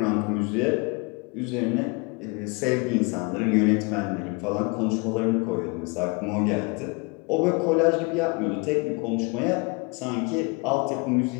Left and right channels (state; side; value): quieter; right; 29.9 dB